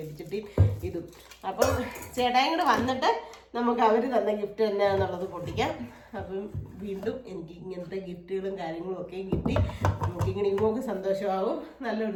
ഇതും. അപ്പം ചേട്ടായും കൂടെ വന്നിട്ട് നമുക്ക് അവർ തന്ന ഗിഫ്റ്റ് എന്നാന്നുള്ളത് പൊട്ടിക്കാം. അപ്പം വീണ്ടും എനിക്ക് ഇങ്ങനത്തെ ഗിഫ്റ്റുകളും കാര്യങ്ങളും ഒക്കെ കിട്ടി. നമുക്കിങ്ങനെ ഇങ്ങോട്ട് സന്തോഷമാകും.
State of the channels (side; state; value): both; identical; correlation 1.00